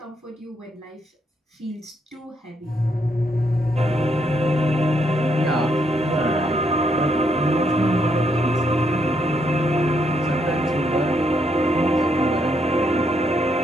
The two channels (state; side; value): normal; both; correlation 0.75